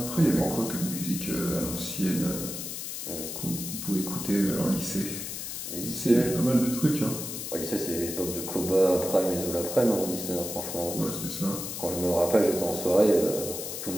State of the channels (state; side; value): noise; left; hiss, 6 dB below the sound